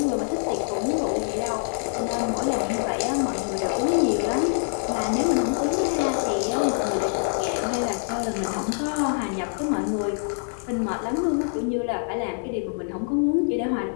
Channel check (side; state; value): right; silent; digital silence